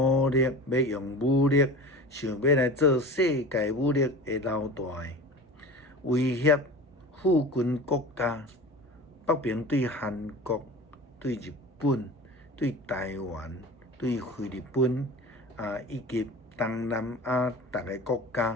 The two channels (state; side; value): normal; both; correlation 0.35